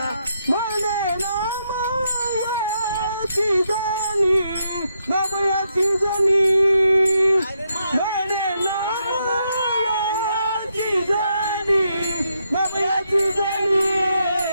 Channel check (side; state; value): both; inverted; correlation -0.79